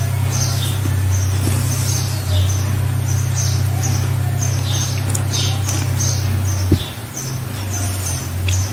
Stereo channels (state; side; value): identical; both; correlation 1.00